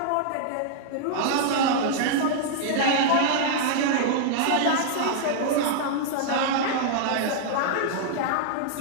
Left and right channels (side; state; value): both; different; correlation -0.01